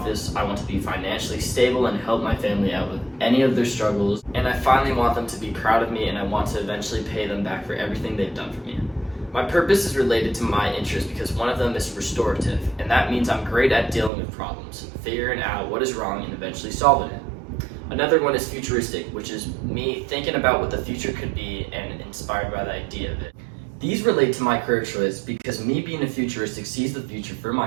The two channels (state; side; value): drops out; left; at 14.1 s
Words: I want to be financially stable and help my family out with any of their struggles. And I finally want them to be proud of me, and I want to eventually pay them back for everything they've done for me. My purpose is related to my interests because one of them is restorative, and that means I'm great at dealing with problems, figuring out what is wrong and eventually solving it. Another one is futuristic, which is me thinking about what the future could be and inspired by the idea of it. These relate to my career choice because me being a futuristic sees the future for